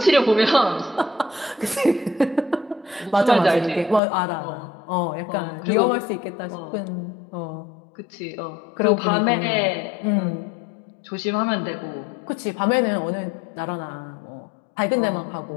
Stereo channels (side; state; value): right; drops out; at 4.0 s